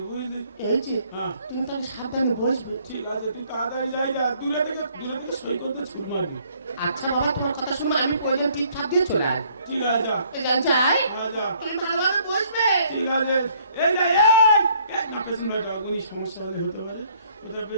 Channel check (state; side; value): inverted; both; correlation -0.63